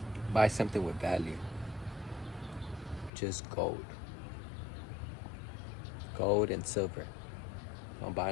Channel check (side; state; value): right; drops out; at 3.1 s